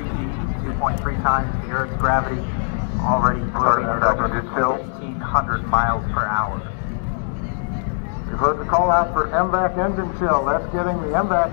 2.3 times the Earth's gravity, already starting at over 1,500 miles per hour. You've heard the call out for MVAC engine chill. That's getting the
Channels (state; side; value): silent; right; 65 dB below the other